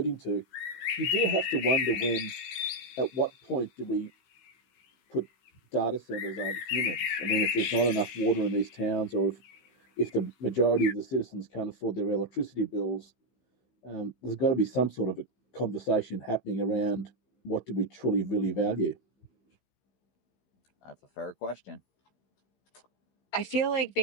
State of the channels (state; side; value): late; right; 16 ms